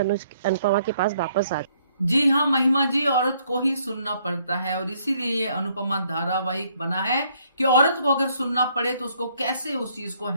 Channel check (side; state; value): both; inverted; correlation -0.67